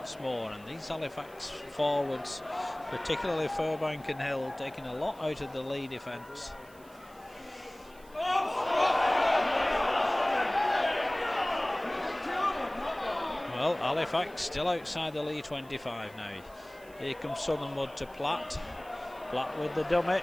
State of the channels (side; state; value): right; noise; hiss, 25 dB below the sound